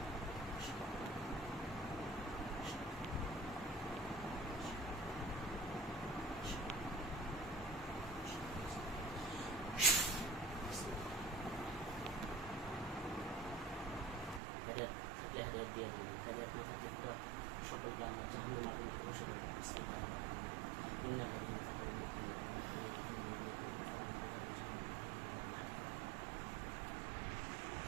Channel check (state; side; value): drops out; left; at 14.4 s